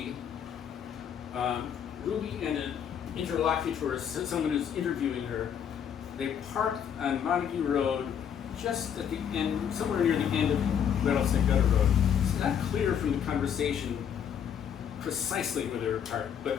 Ruby and an interlocutor, someone who's interviewing her, they parked on Montague Road just at the end, somewhere near the end of Rattlesnake Gutter Road. It's not clear from the conversation precisely where they were parked, but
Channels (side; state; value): right; quieter; 8.4 dB